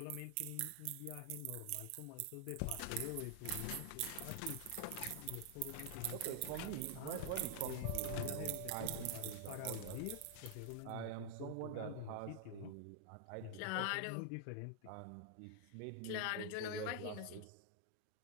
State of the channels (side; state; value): both; different; correlation 0.00